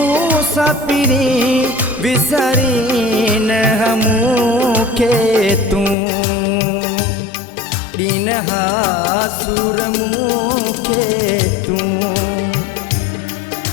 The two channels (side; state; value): right; drops out; at 6.0 s